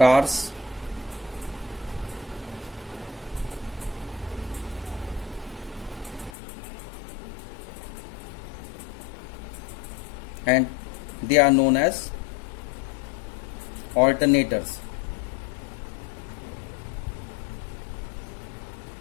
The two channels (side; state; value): right; drops out; at 6.4 s